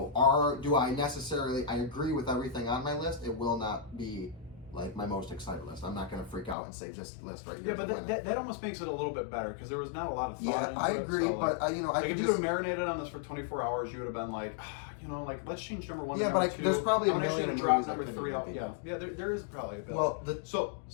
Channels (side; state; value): right; drops out; at 6.6 s